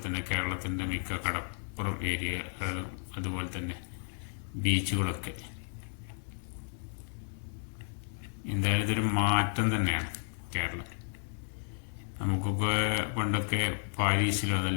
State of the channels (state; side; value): silent; right; digital silence